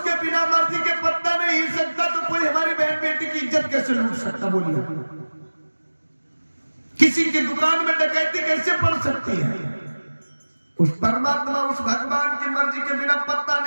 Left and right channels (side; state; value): both; inverted; correlation -1.00